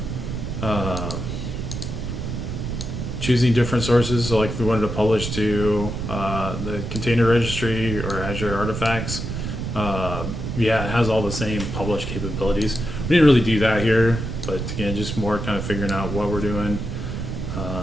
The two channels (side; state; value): right; noise; rumble, 5 dB below the sound